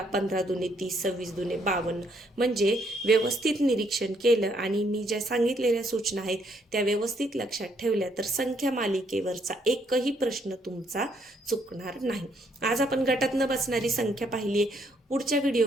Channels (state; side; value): normal; both; correlation 0.71